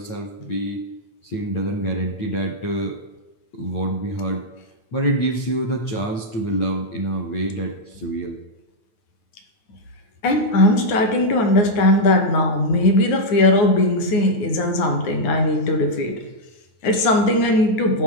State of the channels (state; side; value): late; right; 9.5 ms